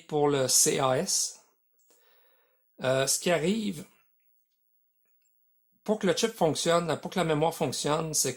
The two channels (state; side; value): identical; both; correlation 1.00